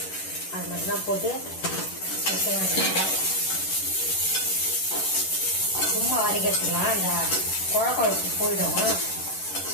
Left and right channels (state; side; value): late; right; 11 ms